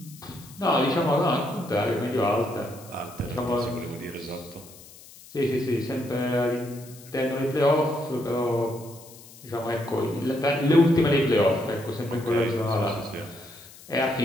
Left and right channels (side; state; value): left; noise; hiss, 20 dB below the sound